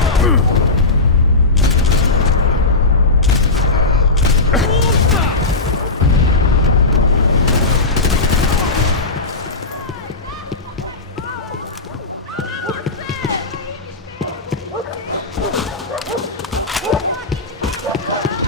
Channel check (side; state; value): right; quieter; 3.3 dB